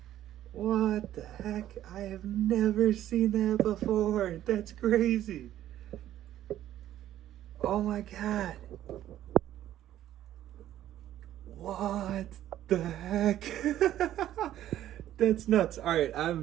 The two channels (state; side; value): quieter; left; 12.5 dB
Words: What the heck? I have never seen that before. That's crazy. Oh my God. What the heck? That's nuts. All right,